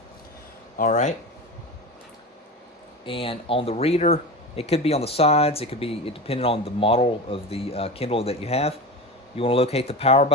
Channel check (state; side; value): normal; both; correlation 0.27